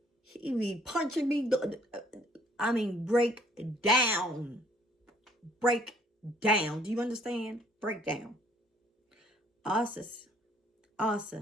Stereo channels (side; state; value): both; normal; correlation 0.61